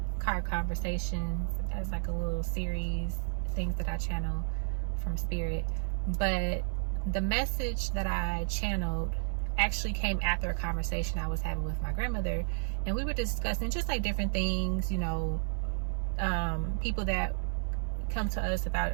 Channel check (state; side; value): silent; left; digital silence